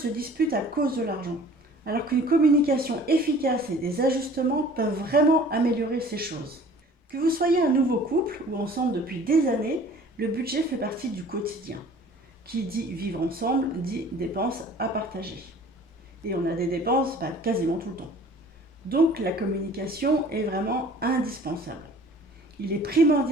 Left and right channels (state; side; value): normal; both; correlation 0.48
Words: dispute à cause de l'argent, alors qu'une communication efficace et des ajustements peuvent vraiment améliorer ces choses. Que vous soyez un nouveau couple ou ensemble depuis des années, le budget fait partie du quotidien. Qui dit vivre ensemble dit dépenses à partager. Et on a des dépenses quasiment tout le temps. Donc la communication est vraiment indispensable. Il est